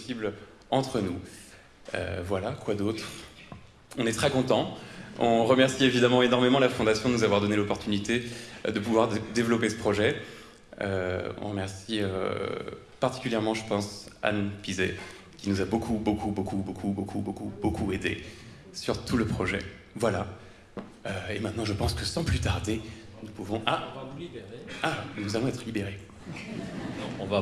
entre nous. Voilà, quoi d'autre? On est très contents. On remercie évidemment énormément la Fondation de nous avoir donné l'opportunité de pouvoir développer ce projet. On remercie particulièrement, je pense, Anne Pizet, qui nous a beaucoup aidé sur tout le projet. Voilà. Et maintenant, je pense que sans plus tarder, nous pouvons... Ah, on va vous libérer. Ah, nous allons être libérés. Non, on va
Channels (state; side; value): identical; both; correlation 1.00